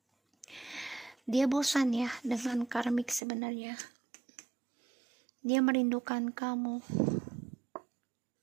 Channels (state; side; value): drops out; left; at 3.2 s